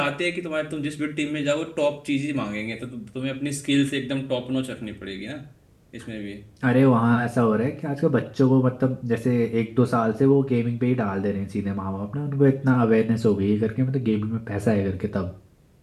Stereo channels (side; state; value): both; identical; correlation 1.00